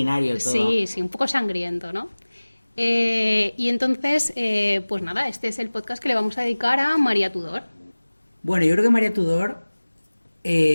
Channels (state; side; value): inverted; both; correlation -1.00